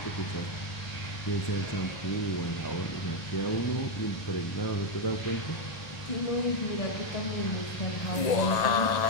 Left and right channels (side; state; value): right; late; 1.8 ms